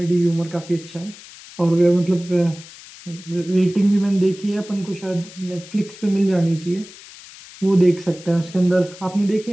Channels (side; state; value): left; noise; hiss, 18 dB below the sound